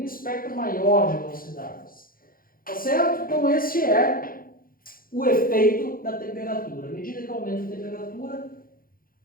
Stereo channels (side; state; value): right; late; 0.42 ms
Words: espectro maior de velocidades. Tá certo? Então esse é o efeito da temperatura. À medida que aumenta a temperatura,